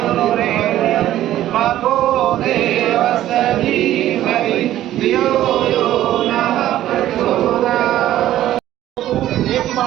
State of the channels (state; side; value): quieter; left; 13.3 dB